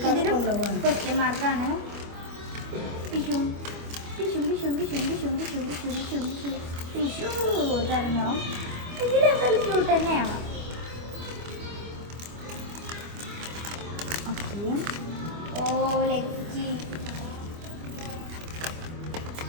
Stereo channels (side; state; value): left; late; 25 ms